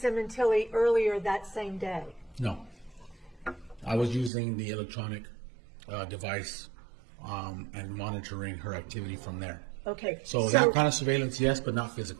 Sementilli earlier that same day? No, I was using the electronic device and monitoring her activity from there. Okay. So that kind of surveillance, yes, but not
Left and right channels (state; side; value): drops out; left; at 4.3 s